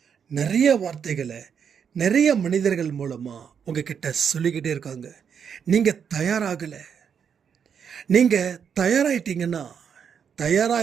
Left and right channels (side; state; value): left; quieter; 7.3 dB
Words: நிறைய வார்த்தைகளை நிறைய மனிதர்கள் மூலமாக உங்ககிட்ட சொல்லிக்கிட்டே இருக்காங்க. நீங்கள் தயாராகலை. நீங்கள் தயாராகிட்டீங்கன்னா